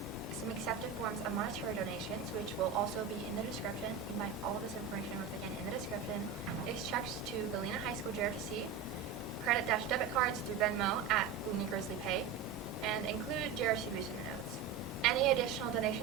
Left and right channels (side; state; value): left; quieter; 6.8 dB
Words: some accepted forms of monetary donations, which will also be in the description. You can find all of this information once again in the description. Is checks to Galena High School JROTC, credit-debit cards through Venmo at Galena Grizzly Pay, and include JROTC Booster in the notes. Any additional